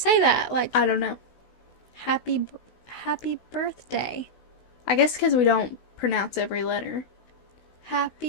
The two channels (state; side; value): late; right; 16 ms